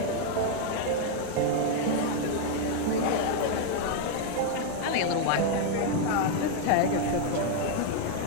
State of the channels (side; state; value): both; different; correlation 0.00